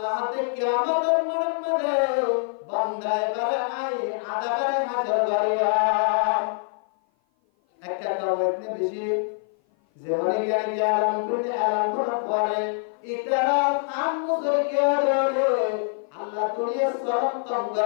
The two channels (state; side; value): silent; right; 56 dB below the other